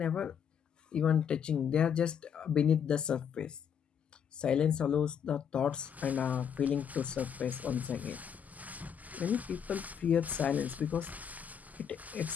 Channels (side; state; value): right; quieter; 7.9 dB